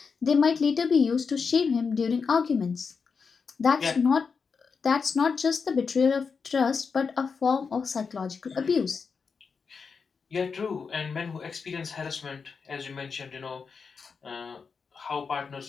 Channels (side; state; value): right; quieter; 5.4 dB